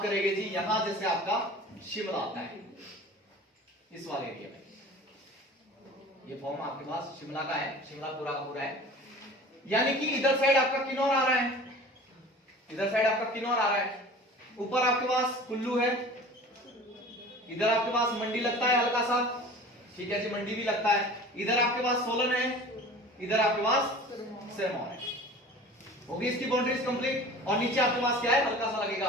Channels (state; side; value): normal; both; correlation 0.41